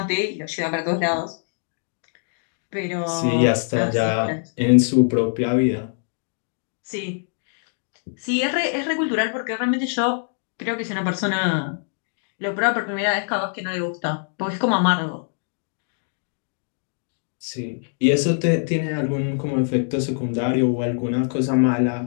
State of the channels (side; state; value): right; silent; digital silence